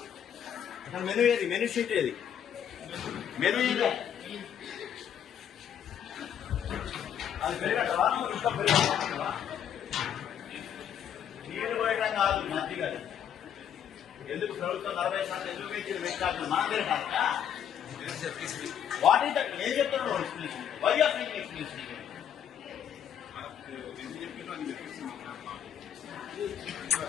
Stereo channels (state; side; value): quieter; right; 9.1 dB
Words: అసలు మెను ఏది? మెను షీట్ ఏది? మెను ఇది అది పెరిగట్టవా? నువ్వు ఇంకా పెరిగట్టవా? నీళ్ళు పోయడం కాదు మంచిగా. ఎందుకు ప్రభుత్వం 40% ఎందుకు పెంచింది? పెట్టాలి మన దగ్గర కాదా? What is that? ఏం చెప్తున్నావు explanation? Why are making explanation?